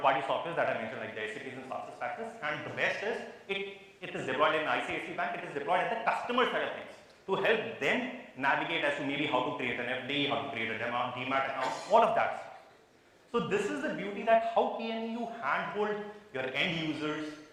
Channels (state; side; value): identical; both; correlation 1.00